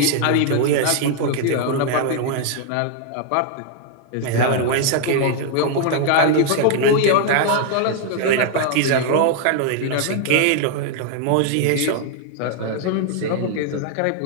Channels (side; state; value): both; different; correlation 0.00